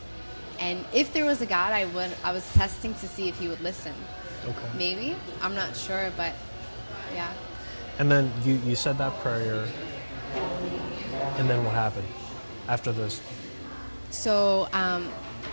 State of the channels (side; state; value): both; inverted; correlation -1.00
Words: And if there was a God, I was testing to see if he would listen. Okay. Maybe. I'm not sure, but yeah. And then you said that prayer, and then what happened after this? So,